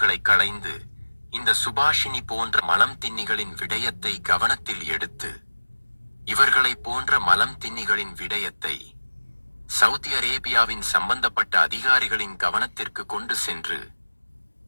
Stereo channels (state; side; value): inverted; both; correlation -1.00